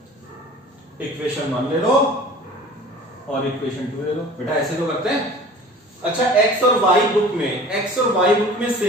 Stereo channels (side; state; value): both; normal; correlation 0.44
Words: Equation 1 ले लो और इक्वेशन 2 ले लो, बेटा ऐसे तो करते हैं। अच्छा x और y बुक में